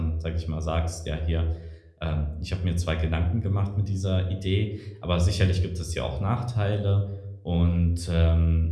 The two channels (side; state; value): both; identical; correlation 1.00